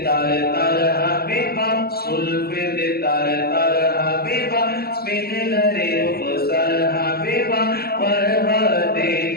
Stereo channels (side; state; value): right; late; 0.45 ms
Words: तर तर हबीबा जुल्फे दे तर तर हबीबा स्पिन लरे रुखसार हबीबा वरवाते